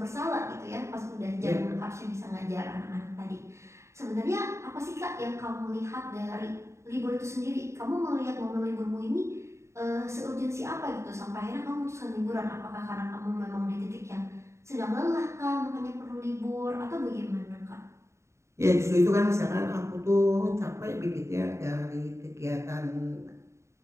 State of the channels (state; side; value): late; left; 0.14 ms